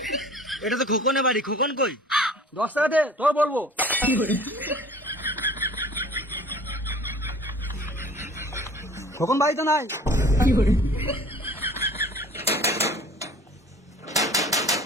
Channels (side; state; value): both; normal; correlation 0.47